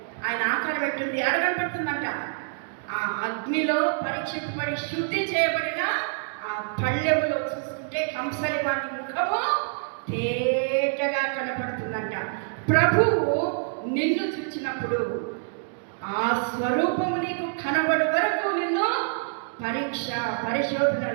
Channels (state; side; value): silent; left; digital silence